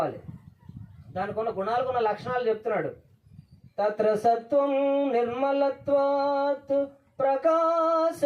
దానికి ఉన్న గుణాలకున్న లక్షణాలు చెప్తున్నాడు. తత్ర సత్వం నిర్మలత్వాత్ ప్రకాశకమనామయం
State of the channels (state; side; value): identical; both; correlation 1.00